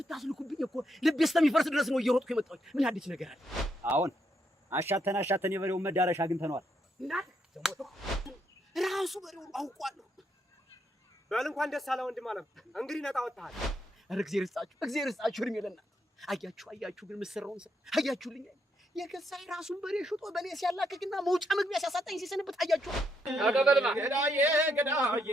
እኮ ልቤ እስከሚፈርስ ድረስ ነው እየሮጥኩ የመጣሁት። ምን አዲስ ነገር አለ? አሁን አሻተን የበሬውን መዳረሻ አግኝተነዋል። እናት ደሞቶ ራሱ በሬውን አውቋለሁ። በል እንኳን ደስ አለ ወንድም አለም። እንግዲህ ነጣ ወጣሃል። ኧረ እግዚአብሔር ይስጣችሁ እድሜ ለእናንተ። አያችሁ ግን የምትሰራውን ስራ አያችሁልኝ። የገዛኝ ራሱን በሬ ሽጦ በኔ ሲያላክክና መውጫ መግቢያ ሲያሳጣኝ ሲሰንበት አያችሁ። አቀበልማ ገዳዬ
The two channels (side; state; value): both; normal; correlation 0.77